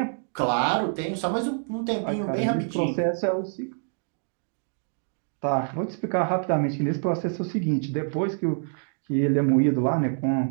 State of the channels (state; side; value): silent; left; 61 dB below the other